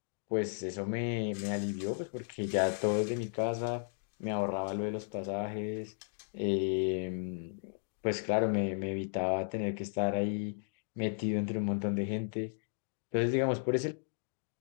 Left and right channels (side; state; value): right; silent; digital silence